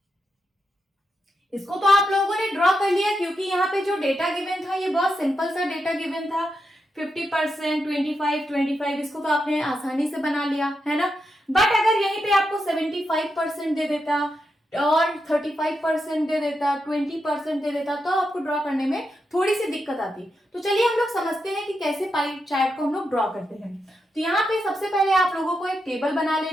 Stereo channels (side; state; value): both; normal; correlation 0.85